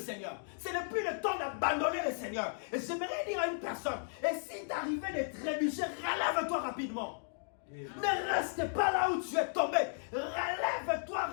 Ce n'est plus le temps d'abandonner le Seigneur. Et j'aimerais dire à une personne, et si tu arrivais de trébucher, relève-toi rapidement. Amen. Ne reste pas là où tu es tombé. Relève-toi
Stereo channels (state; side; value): silent; right; digital silence